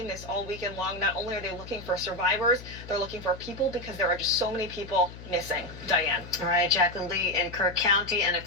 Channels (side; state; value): left; noise; hum, 14 dB below the sound